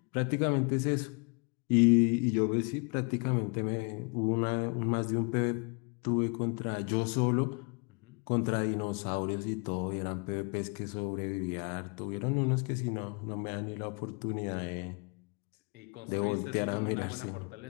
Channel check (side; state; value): right; quieter; 34.1 dB